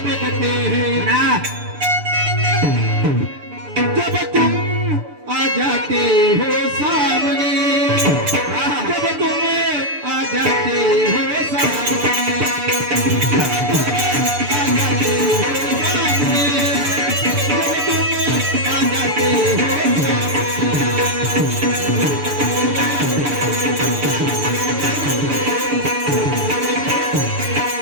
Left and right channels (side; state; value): left; late; 6.8 ms